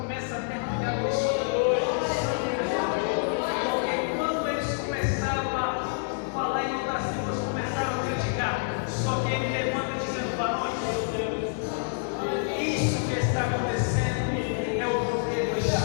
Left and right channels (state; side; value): silent; right; digital silence